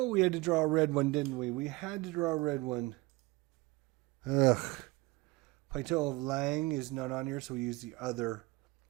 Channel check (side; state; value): left; quieter; 22.5 dB